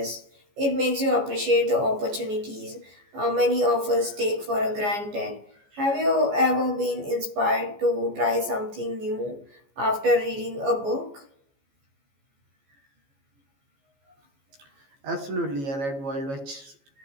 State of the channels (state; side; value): late; left; 14 ms